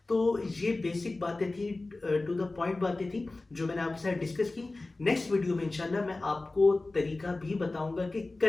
तो ये बेसिक बातें थी, टू द पॉइंट बातें थी जो मैंने आपके साथ डिस्कस की। नेक्स्ट वीडियो में इंशाल्लाह मैं आपको तरीका भी बताऊँगा कि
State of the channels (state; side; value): quieter; right; 3.2 dB